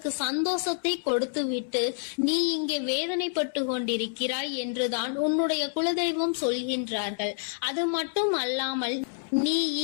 சந்தோஷத்தை கொடுத்துவிட்டு நீ இங்கே வேதனைப்பட்டு கொண்டிருக்கிறாய் என்றுதான் உன்னுடைய குலதெய்வம் சொல்கின்றார்கள். அது மட்டும் அல்லாமல் நீ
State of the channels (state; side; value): silent; right; digital silence